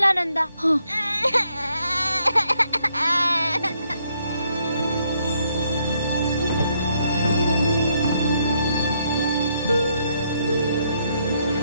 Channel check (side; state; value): both; inverted; correlation -0.73